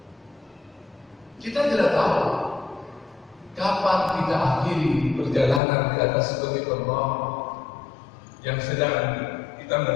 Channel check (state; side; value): drops out; right; at 5.6 s